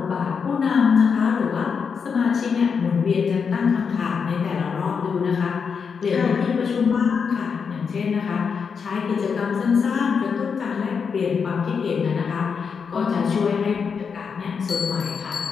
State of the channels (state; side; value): quieter; right; 6.0 dB